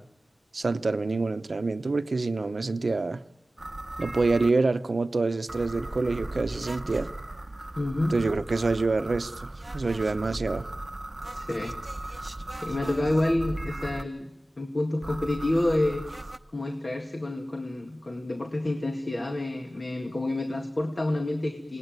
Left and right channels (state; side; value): normal; both; correlation 0.96